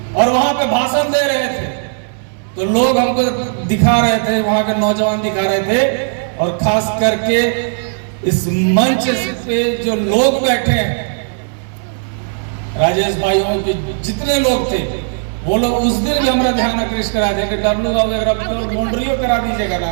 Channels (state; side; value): silent; left; 69 dB below the other